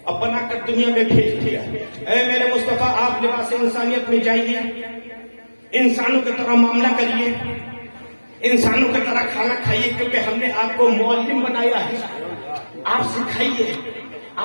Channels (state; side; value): inverted; both; correlation -1.00